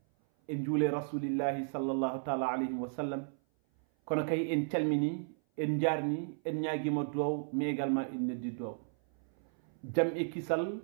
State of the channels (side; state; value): left; silent; 55 dB below the other